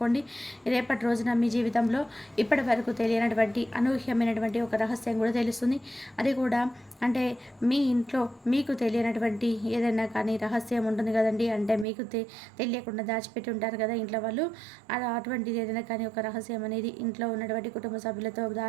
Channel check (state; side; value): drops out; left; at 11.9 s